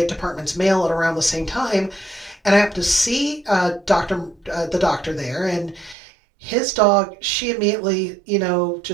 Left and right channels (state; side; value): drops out; left; at 6.0 s